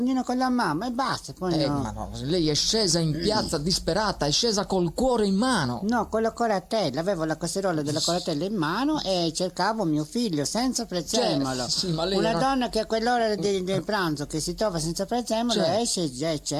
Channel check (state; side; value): identical; both; correlation 1.00